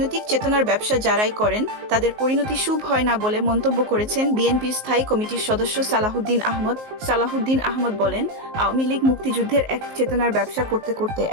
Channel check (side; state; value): left; late; 19 ms